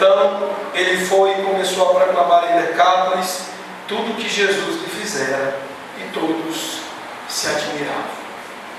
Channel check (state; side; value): identical; both; correlation 1.00